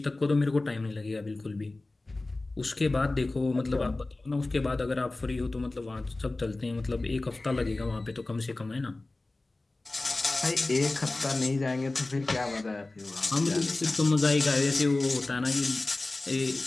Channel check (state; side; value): quieter; right; 3.0 dB